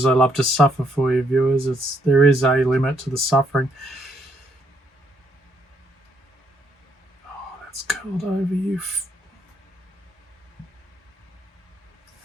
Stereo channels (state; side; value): normal; both; correlation 0.72